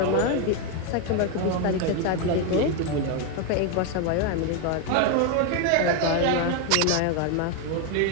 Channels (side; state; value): both; different; correlation 0.02